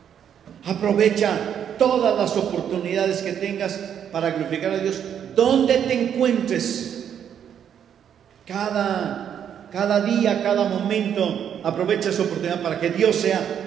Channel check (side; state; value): left; quieter; 8.8 dB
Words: Aprovecha todas las oportunidades que tengas para glorificar a Dios donde te encuentres. Cada día, cada momento, aprovecha esa oportunidad para que Dios sea